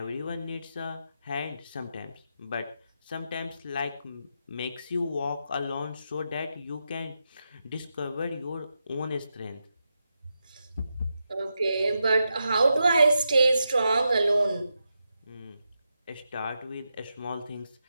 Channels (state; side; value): inverted; both; correlation -0.87